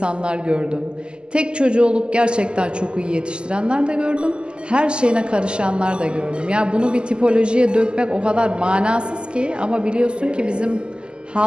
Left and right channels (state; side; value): late; left; 0.049 ms